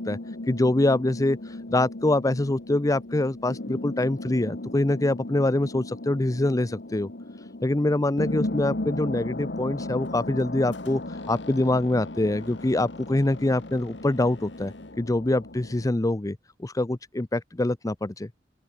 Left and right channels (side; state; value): both; normal; correlation 0.81